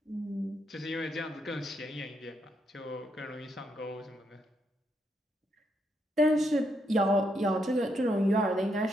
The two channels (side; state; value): both; normal; correlation 0.78